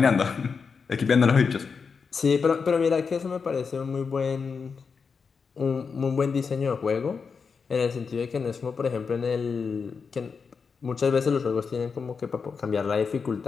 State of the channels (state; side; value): quieter; right; 5.5 dB